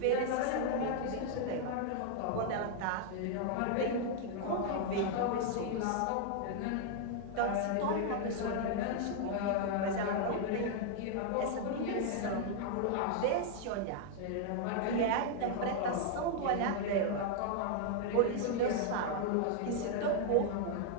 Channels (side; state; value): both; different; correlation 0.00